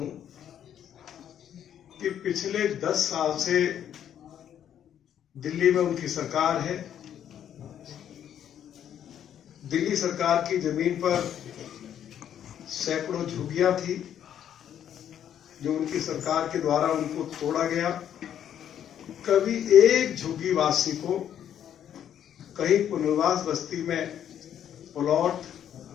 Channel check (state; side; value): quieter; right; 9.8 dB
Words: कि पिछले 10 साल से दिल्ली में उनकी सरकार है। दिल्ली सरकार की जमीन पर सैकड़ों झुग्गियां थी जो उनकी सरकार के द्वारा उनको तोड़ा गया। कभी एक झुग्गीवासी को कहीं पुनर्वास बस्ती में प्लॉट